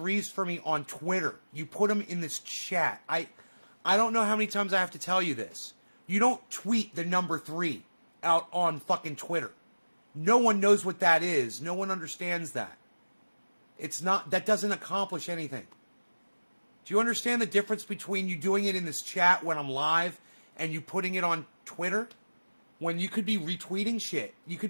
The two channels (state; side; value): inverted; both; correlation -1.00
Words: for me on Twitter. You put them in this chat. I don't know how many times I have to tell you this. You don't tweet the number 3 out on fucking Twitter. No one knows what that is. No one understands that. It's not, that doesn't accomplish anything. Do you understand the difference between you doing it in this chat when I'm live and you putting it on Twitter? When you could be retweeting shit. You could